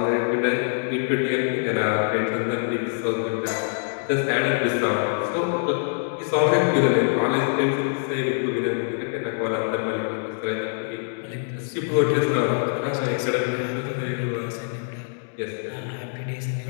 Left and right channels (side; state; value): right; silent; 59 dB below the other